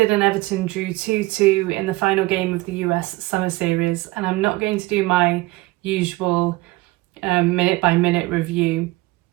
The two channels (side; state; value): left; quieter; 20.4 dB